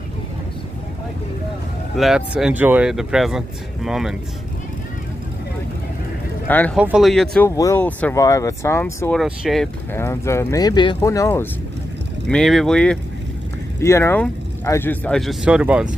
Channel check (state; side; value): normal; both; correlation 0.88